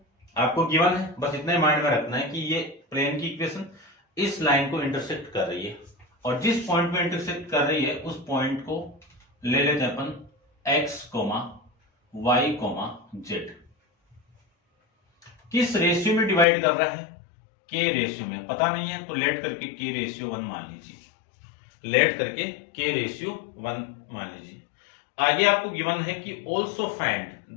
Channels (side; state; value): right; drops out; at 16.4 s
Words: आपको गिवन है, बस इतना ही माइंड में रखना है कि ये प्लेन की इक्वेशन इस लाइन को इंटरसेक्ट कर रही है, और जिस पॉइंट में इंटरसेक्ट कर रही है उस पॉइंट को ले लेते हैं अपन x, y, z। किस रेशियो में डिवाइड कर रहा है, के रेशियो में। पता नहीं है तो लेट करके के रेशियो 1 मान लीजिए, लेट करके के रेशियो 1 मान लीजिए। आगे आपको गिवन है कि also find